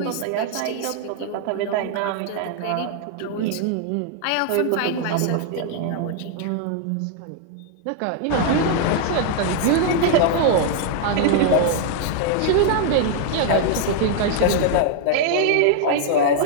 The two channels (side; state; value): both; different; correlation 0.00